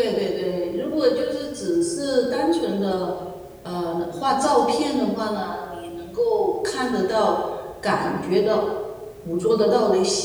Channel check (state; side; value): identical; both; correlation 1.00